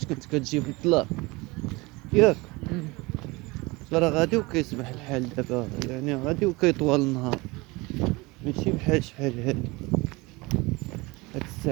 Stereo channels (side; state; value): left; quieter; 23.8 dB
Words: كنت كتجي في الظلام ياك. راه غادي وكيسمح الحال دابا، يعني غادي وكيطول النهار، ماشي بحال شحال هادي هاد